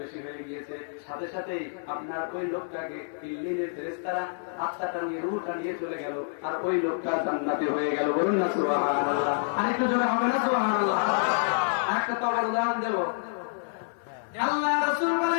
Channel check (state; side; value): silent; right; digital silence